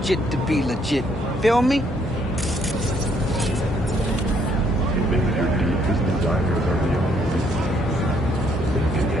to be legit. Feel me?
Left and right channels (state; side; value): normal; both; correlation 0.69